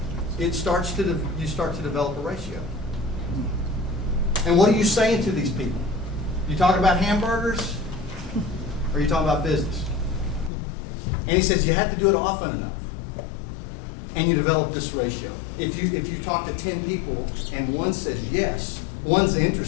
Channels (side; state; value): right; drops out; at 10.5 s